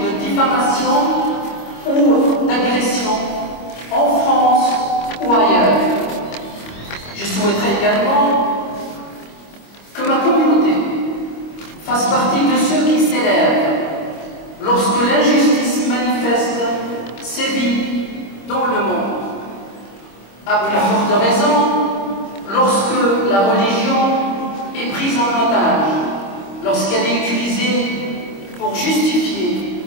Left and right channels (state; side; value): late; right; 25 ms